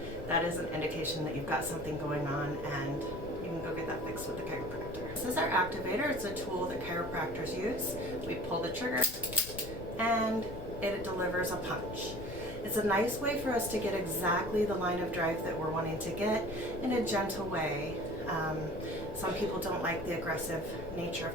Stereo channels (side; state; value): left; noise; rumble, 11 dB below the sound